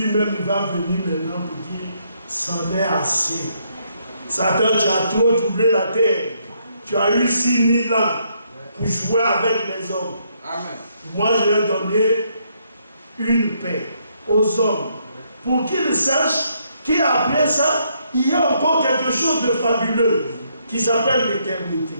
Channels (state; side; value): inverted; both; correlation -0.73